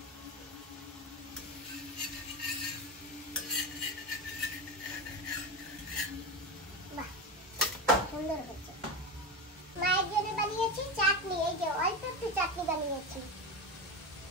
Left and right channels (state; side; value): normal; both; correlation 0.19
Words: সুন্দর হচ্ছে। মায়ের জন্য বানিয়েছি চাটনি, এই যে অল্প একটু চাটনি বানিয়েছি।